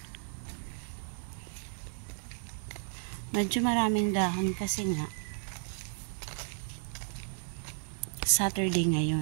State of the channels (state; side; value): silent; left; digital silence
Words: Medyo maraming dahon kasi nga Saturday